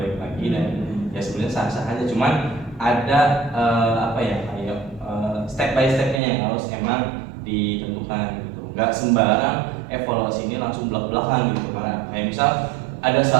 lagi dan ya sebenarnya sah-sah aja. Cuman ada kayak step by stepnya yang harus emang ditentukan gitu. Nggak sembarang evaluasi ini langsung belak-belakan gitu. Karena kayak misal ada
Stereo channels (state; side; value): drops out; left; at 6.2 s